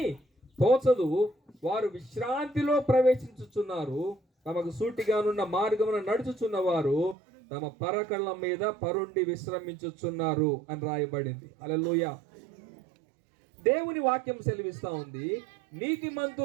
తోచదు, వారు విశ్రాంతిలో ప్రవేశించుచున్నారు, తమకు సూటిగానున్న మార్గమున నడుచుచున్న వారు తమ పరకళ్ళ మీద పరుండి విశ్రమించుచున్నారు అని రాయబడింది. హల్లెలూయా. దేవుని వాక్యం సెలవిస్తా ఉంది,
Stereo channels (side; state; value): left; drops out; at 7.2 s